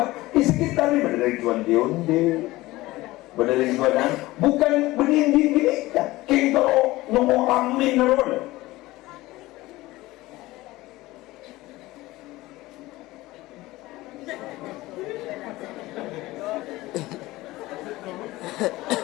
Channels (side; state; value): right; quieter; 18.7 dB